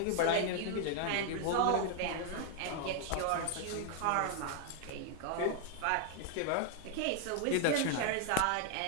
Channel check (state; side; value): different; both; correlation 0.00